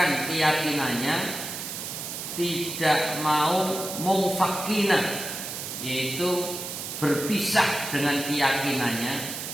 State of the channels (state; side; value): noise; right; hiss, 6 dB below the sound